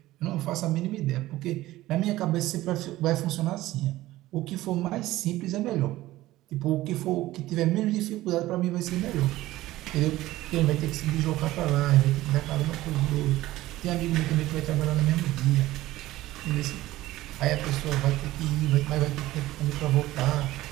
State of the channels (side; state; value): left; quieter; 16.5 dB